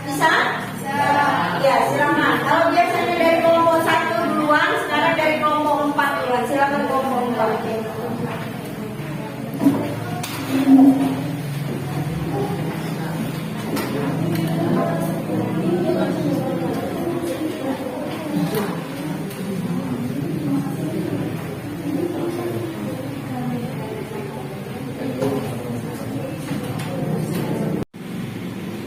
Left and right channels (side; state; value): both; identical; correlation 1.00